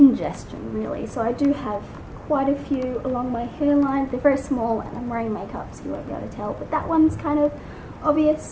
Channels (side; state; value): both; identical; correlation 1.00